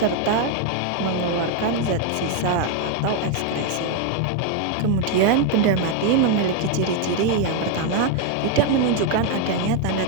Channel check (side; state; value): both; different; correlation 0.01